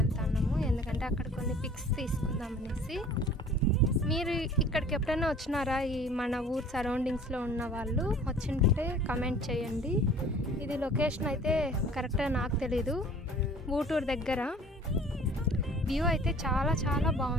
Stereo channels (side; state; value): both; normal; correlation 0.48